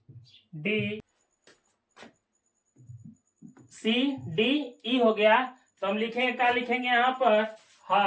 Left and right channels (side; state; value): both; identical; correlation 1.00